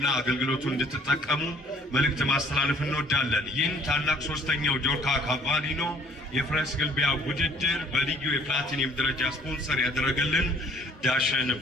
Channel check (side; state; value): both; normal; correlation 0.58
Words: አገልግሎቱን እንድትጠቀሙ መልእክት ማስተላለፍ እንወዳለን። ይህን ታላቅ ሶስተኛው ጆርካ ካቫሊኖ የፈረስ ግልቢያ ውድድር በልዩ የፕላቲኒየም ደረጃ ስፖንሰር ያደረገልን ዳሸን